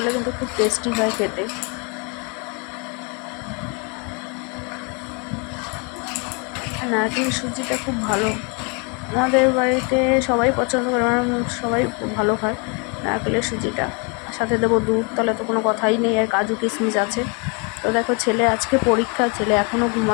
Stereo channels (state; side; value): quieter; right; 33.7 dB